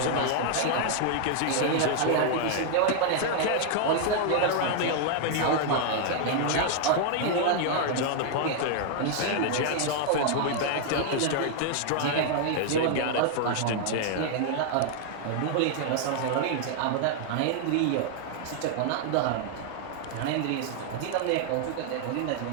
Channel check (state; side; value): different; both; correlation 0.00